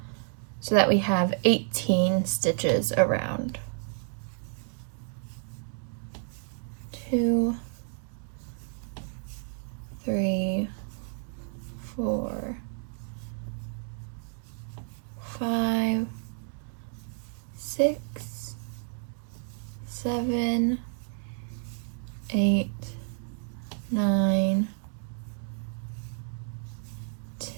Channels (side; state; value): left; silent; 57 dB below the other